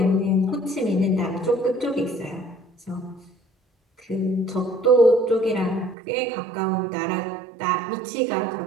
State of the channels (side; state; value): left; drops out; at 6.0 s